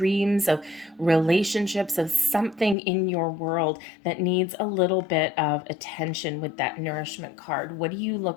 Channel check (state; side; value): drops out; right; at 2.8 s